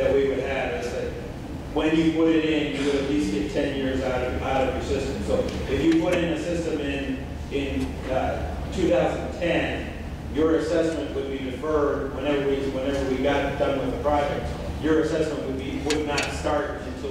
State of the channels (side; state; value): both; identical; correlation 1.00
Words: we would have is that when you put it in, you would at least get 10 years out of your system. So if you put in a system in 2010, your assessment would be deferred whenever we got done with the project. your assessment would not start